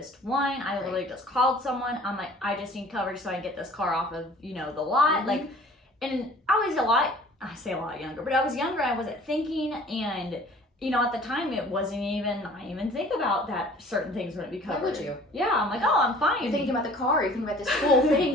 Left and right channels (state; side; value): normal; both; correlation 0.50